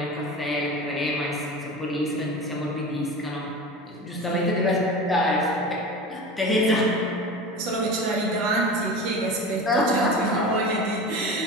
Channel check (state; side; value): normal; both; correlation 0.32